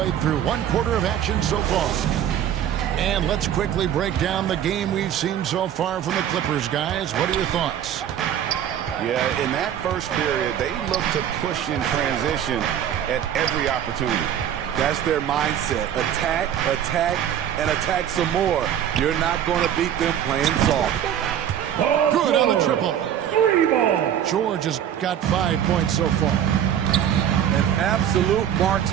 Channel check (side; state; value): left; quieter; 10.0 dB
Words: through 1 quarter of action so far. And let's quickly break down the game we've seen so far from the Clippers, guys. What are your thoughts? Yeah, in that first period, they looked to push in transition at every opportunity. That's their mindset. Attack, attack, and attack some more. You're not going to beat them playing soft. Good on the triple. 3 ball. George has got 5 points so far. An absolute